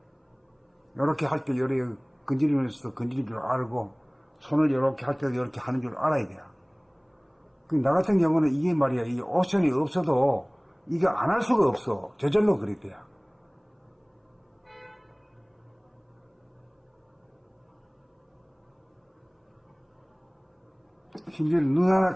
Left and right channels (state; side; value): identical; both; correlation 1.00